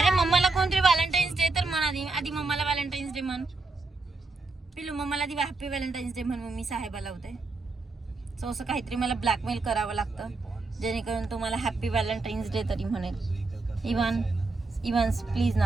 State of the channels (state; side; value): quieter; left; 3.6 dB